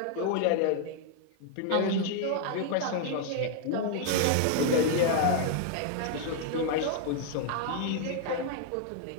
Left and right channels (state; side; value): different; both; correlation 0.00